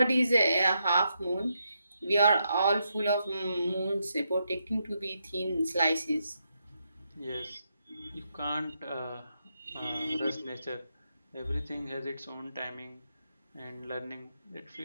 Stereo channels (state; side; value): inverted; both; correlation -0.81